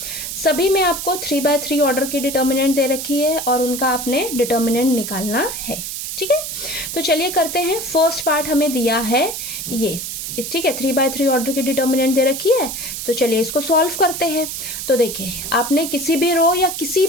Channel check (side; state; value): right; noise; hiss, 6 dB below the sound